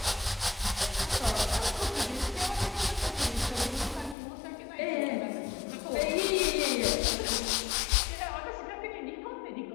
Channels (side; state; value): right; drops out; at 4.2 s